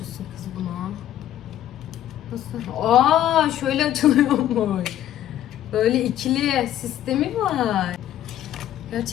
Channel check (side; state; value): right; quieter; 11.9 dB